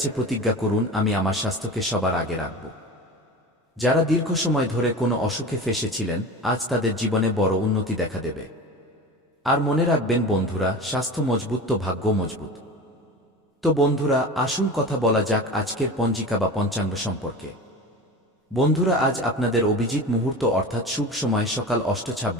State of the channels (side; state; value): both; normal; correlation 0.32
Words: প্রতিজ্ঞা করুন, আমি আমার স্বাস্থ্যকে সবার আগে রাখব। যারা দীর্ঘ সময় ধরে কোনো অসুখে ফেঁসেছিলেন, আজ তাদের জীবনে বড় উন্নতি দেখা দেবে। আর মনে রাখবেন বন্ধুরা, স্বাস্থ্য মজবুত তো ভাগ্য মজবুত। তো বন্ধুরা, আসুন কথা বলা যাক আজকের পঞ্জিকা বা পঞ্চাঙ্গ সম্পর্কে। বন্ধুরা, আজ আপনাদের অভিজিৎ মুহূর্ত অর্থাৎ শুভ সময় সকাল